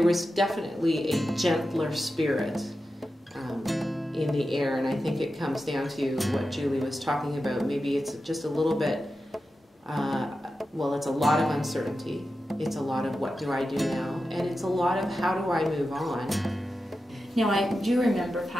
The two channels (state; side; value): normal; both; correlation 0.91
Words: was definitely a gentler spirit in the air, and I think it comes down to what Julie was talking about. Maybe it's just a little bit, well, it's a lot of uncertainty. It's a lot of what do I do now? And it's a lot of how do I move on? Now, I do remember